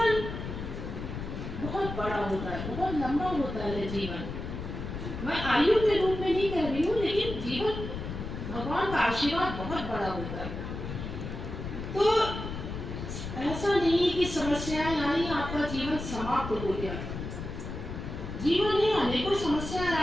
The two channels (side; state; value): left; noise; rumble, 7 dB below the sound